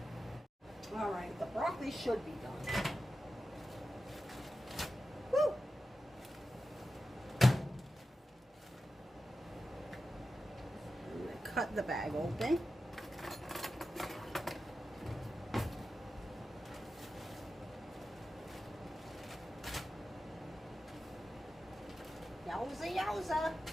All right, the broccoli should be done. Woo! I'm gonna cut the bag open. Yowza, yowza.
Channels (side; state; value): both; normal; correlation 0.92